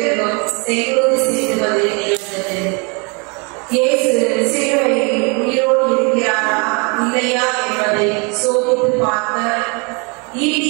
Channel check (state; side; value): quieter; left; 32.4 dB